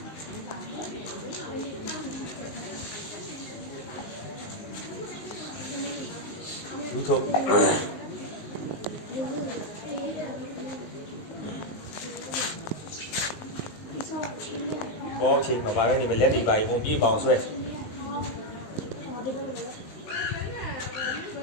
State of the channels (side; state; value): right; late; 19 ms